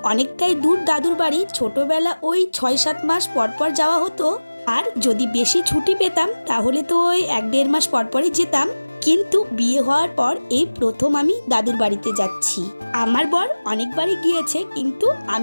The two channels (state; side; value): inverted; both; correlation -1.00